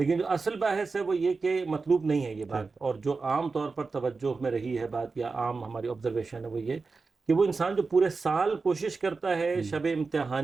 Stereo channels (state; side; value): quieter; left; 4.3 dB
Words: جو اصل بحث ہے وہ یہ کہ مطلوب نہیں ہے یہ بات. اور جو عام طور پر توجہ میں رہی ہے بات یا عام ہماری آبزرویشن ہے وہ یہ کہ وہ انسان جو پورے سال کوشش کرتا ہے شب